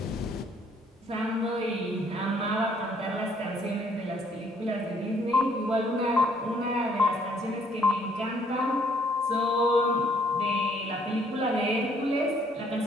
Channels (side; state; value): both; normal; correlation 0.64